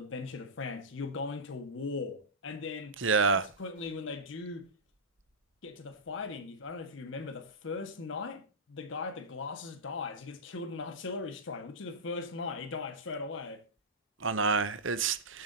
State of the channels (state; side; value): normal; both; correlation -0.15